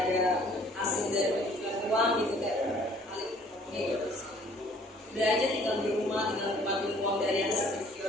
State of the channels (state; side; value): normal; both; correlation 0.57